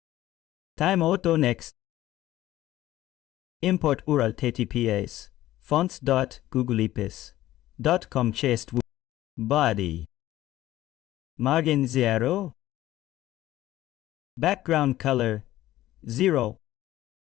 time auto next. Import URL https fonts dot googleapis dot com chest body margin 0 background color 0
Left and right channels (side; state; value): right; quieter; 14.8 dB